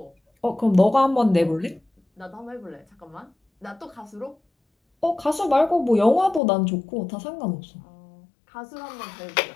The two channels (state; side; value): drops out; right; at 6.4 s